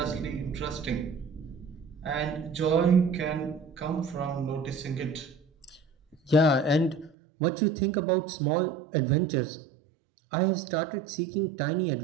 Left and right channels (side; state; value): left; drops out; at 7.1 s